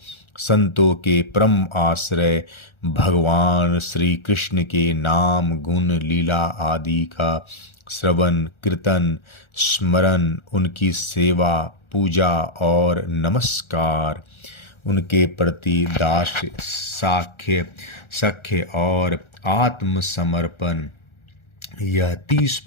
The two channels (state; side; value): late; right; 1.4 ms